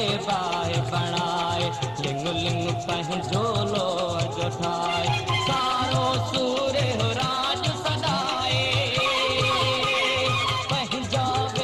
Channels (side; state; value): both; identical; correlation 1.00